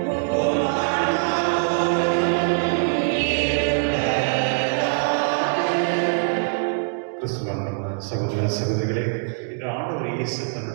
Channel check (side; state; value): left; silent; digital silence